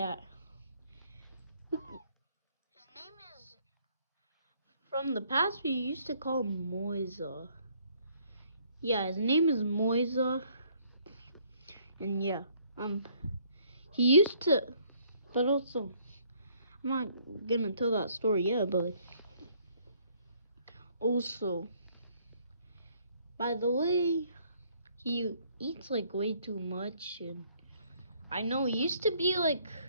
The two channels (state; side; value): inverted; both; correlation -0.64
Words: His name is, from the past we used to call him Muezza. Yeah, his name is Muezza. And yeah, he used to, but also, I'm not gonna tell that story yet, but also, by the way, he eats like way too much, and I know he used to be like,